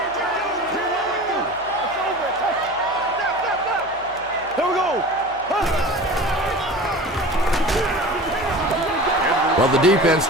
Well, the defense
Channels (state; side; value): noise; right; hum, 24 dB below the sound